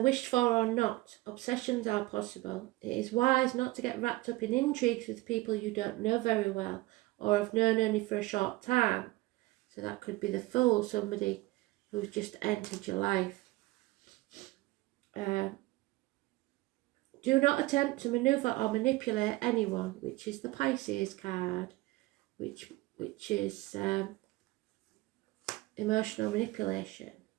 wished for or not, obsessions are possible. It is wise not to get wrapped up in intrigues with people you don't know very well or have known only for a short time. So that could be the fool, somebody who's just entered your life. Do not attempt to maneuver or manipulate anyone, which is the Pisces card, which is emotional manipulation.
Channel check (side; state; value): left; quieter; 20.0 dB